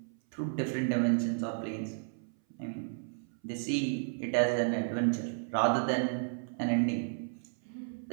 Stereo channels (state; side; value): silent; left; 56 dB below the other